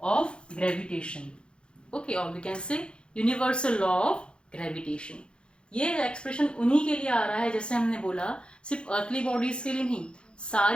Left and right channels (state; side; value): late; right; 0.054 ms